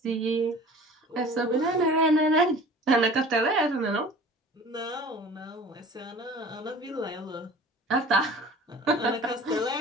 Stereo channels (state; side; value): normal; both; correlation 0.44